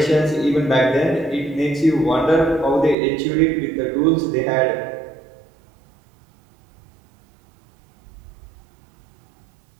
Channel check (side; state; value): left; drops out; at 3.0 s